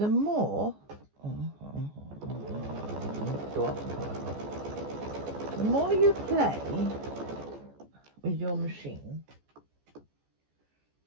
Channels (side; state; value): left; late; 14 ms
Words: more the more you play with your machine,